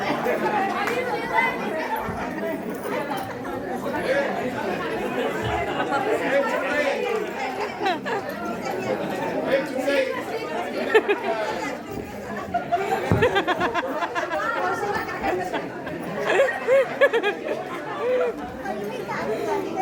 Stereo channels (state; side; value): identical; both; correlation 1.00